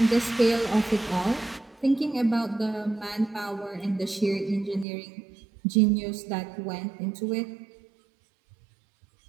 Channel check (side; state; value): left; drops out; at 4.9 s